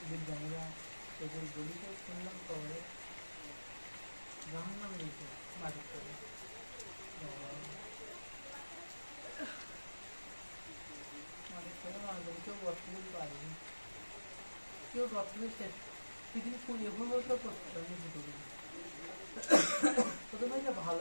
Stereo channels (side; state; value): both; inverted; correlation -1.00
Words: বিজ্ঞানীরা এদের গলিতে শুনলাম খবরে জাহান নাম দিয়েছে মাটির তলে কেউ গঠন পারেনি কেউ গঠন শেষ পৃথিবী এগুলো তো করতে পারেনি দুটো প্রথমে যে ভালো